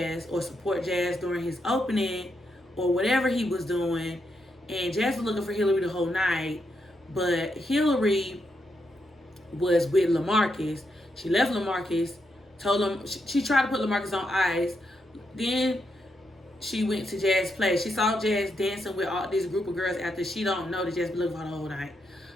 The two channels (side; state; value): both; normal; correlation 0.82